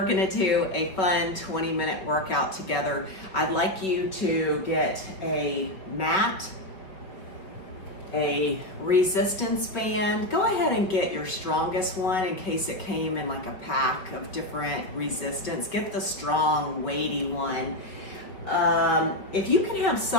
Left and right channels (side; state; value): right; late; 5.6 ms